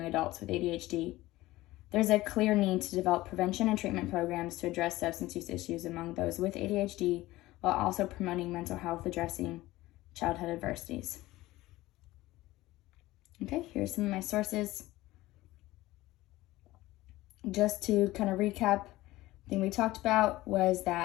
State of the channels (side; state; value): right; quieter; 17.7 dB